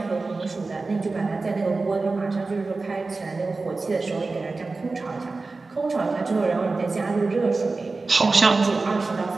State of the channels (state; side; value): quieter; left; 3.7 dB